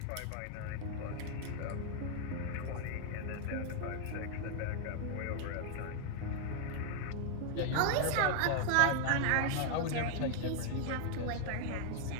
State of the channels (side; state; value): both; different; correlation 0.00